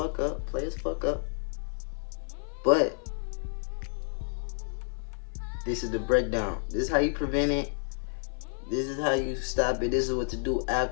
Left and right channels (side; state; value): right; silent; 58 dB below the other